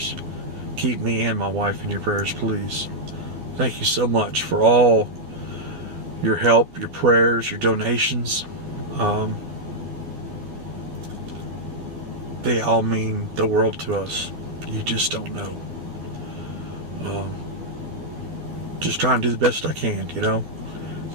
Keep me and my wife in your prayers, please. Thank you so much for all your help, your prayers, your donations. They all mean the world to us. You just don't know. Just trying to do the best I can, you know. At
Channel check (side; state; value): left; late; 13 ms